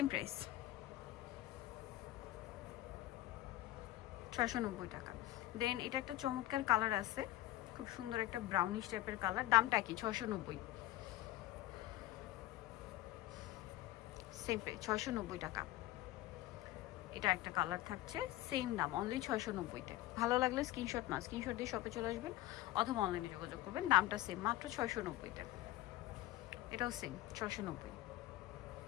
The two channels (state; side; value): quieter; right; 15.8 dB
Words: প্রাইস 690 টাকা। দেন এটা একটা চমৎকার কালার আছে, খুব সুন্দর একটা ব্রাউনিশ টাইপের কালার, দামটা কি 690, সেম প্রাইস 690 টাকা। এটা একটা কালার থাকছে, সেম দাম অনলি 690-তে। ভালো লাগলে স্ক্রিনশট দিয়ে শপে চলে আসবেন অথবা অনলাইনে যোগাযোগ করবেন। দামটা সেম, মাত্র 690-তে। এটাও সেম 690।